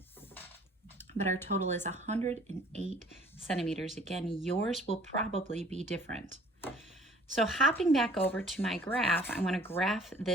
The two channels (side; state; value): both; normal; correlation 0.53